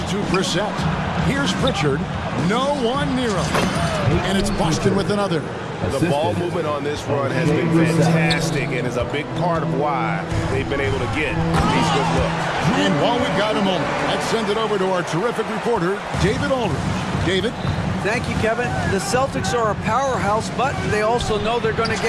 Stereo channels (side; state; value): both; identical; correlation 1.00